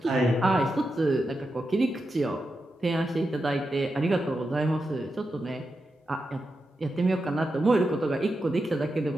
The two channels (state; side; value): normal; both; correlation 0.88